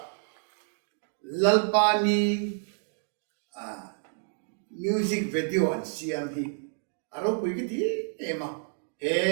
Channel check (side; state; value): left; silent; digital silence